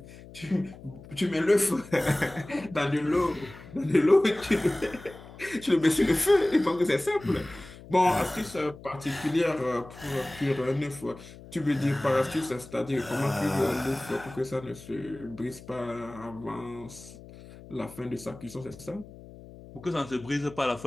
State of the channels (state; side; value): noise; left; hum, 18 dB below the sound